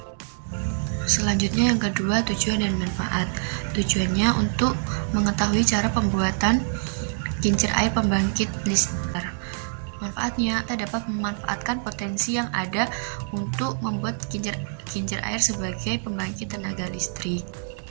Selanjutnya yang kedua, tujuan dan manfaat. Tujuannya untuk mengetahui cara pembuatan kincir air pembangkit listrik. Manfaatnya, kita dapat memanfaatkan potensi yang ada untuk membuat kincir air sebagai pembangkit tenaga listrik.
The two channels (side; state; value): left; silent; digital silence